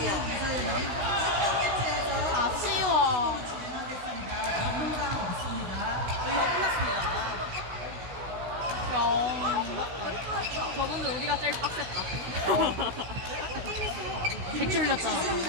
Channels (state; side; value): late; left; 16 ms